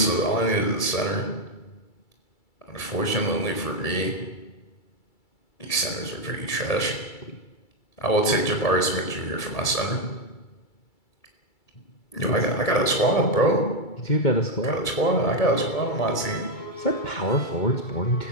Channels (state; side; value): late; right; 2.3 ms